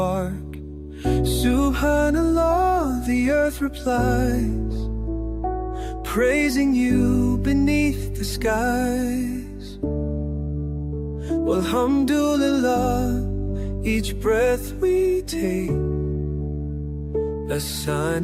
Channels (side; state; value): both; identical; correlation 1.00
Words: Subhanallah, the earth replies, praising you beneath the skies. Walhamdulillah, each breath we take, a